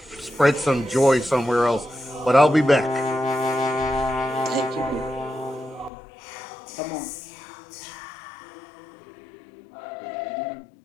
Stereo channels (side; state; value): right; drops out; at 5.9 s